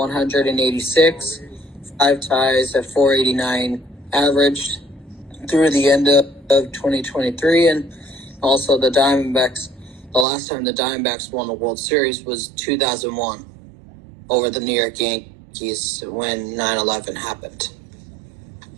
5 ties at 489 average through the end of 2023. And also the Diamondbacks, the last time the Diamondbacks won the World Series was 2001 over the New York Yankees when 9/11 happened.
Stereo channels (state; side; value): drops out; left; at 10.2 s